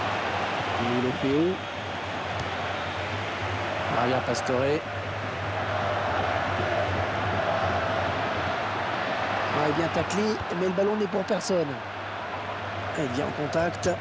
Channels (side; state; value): both; identical; correlation 1.00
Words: Il est fait où? Maria Pastore. Il est bien taclé, mais le ballon n'est pour personne. Il vient en contact.